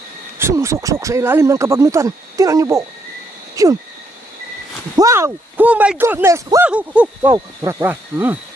Sumusuksok sa ilalim ng kabagnutan. Tinan niyo po. Yun. Wow! Oh my goodness! Wow! Tura.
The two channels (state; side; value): normal; both; correlation 0.74